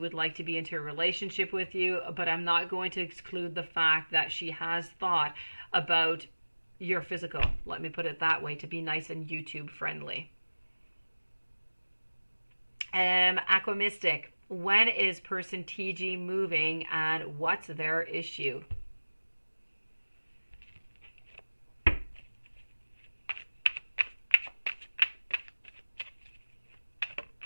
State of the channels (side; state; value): both; inverted; correlation -1.00